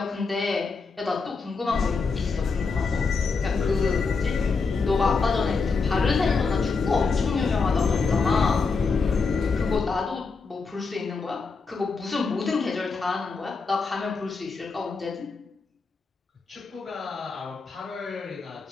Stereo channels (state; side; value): quieter; right; 4.6 dB